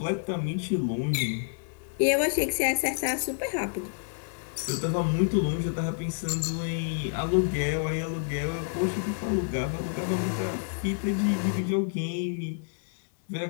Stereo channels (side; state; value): right; silent; 59 dB below the other